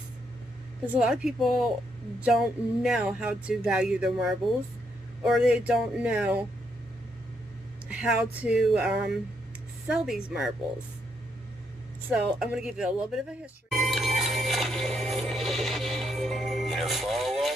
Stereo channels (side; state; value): both; normal; correlation 0.76